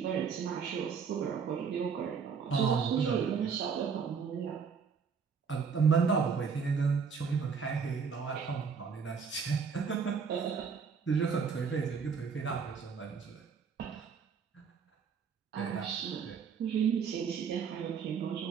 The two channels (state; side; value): quieter; left; 6.1 dB